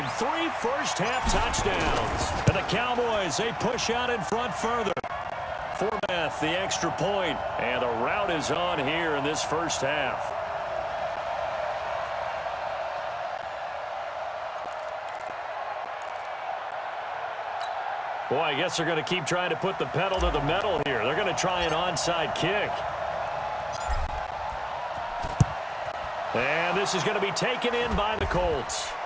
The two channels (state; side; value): identical; both; correlation 1.00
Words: 3 first-half touchdowns. And the Cowboys, they push out in front further. Forbath, the extra point. And the route is on here in this first half. Boy, I guess they're going to keep trying to put the pedal to the metal here. They're going to try an onside kick. And this is going to be taken in by the Colts.